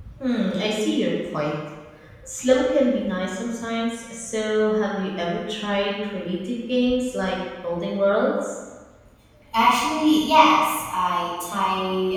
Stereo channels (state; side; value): identical; both; correlation 1.00